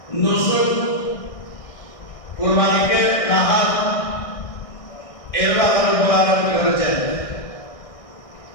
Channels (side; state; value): right; late; 1.6 ms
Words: নুসুক, কুরবানিকে নাহার এর ব্যাপারে বলার করেছেন,